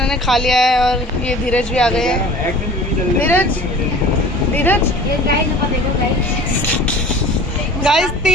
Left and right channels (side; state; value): both; normal; correlation 0.44